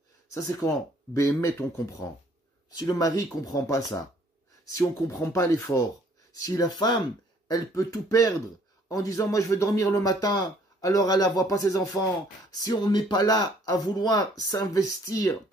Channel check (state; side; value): normal; both; correlation 0.61